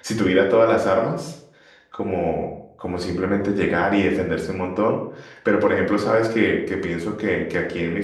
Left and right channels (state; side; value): identical; both; correlation 1.00